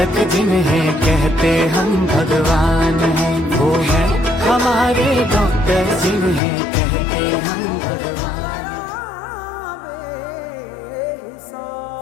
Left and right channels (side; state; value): right; drops out; at 6.4 s